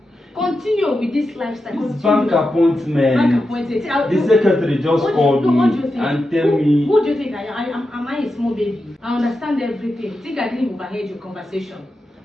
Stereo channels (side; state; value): both; normal; correlation 0.89